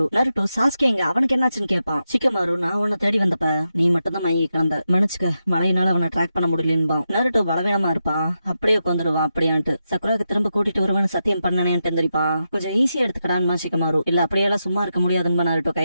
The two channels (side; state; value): both; inverted; correlation -0.87